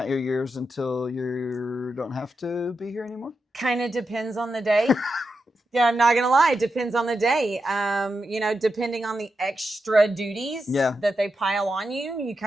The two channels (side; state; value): both; normal; correlation 0.87